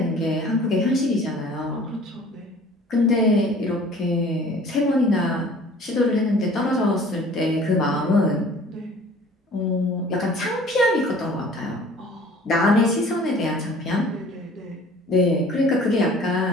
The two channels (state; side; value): normal; both; correlation 0.49